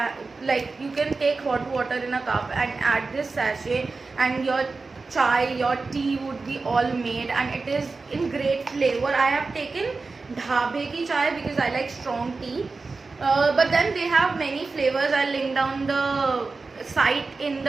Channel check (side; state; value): left; quieter; 4.0 dB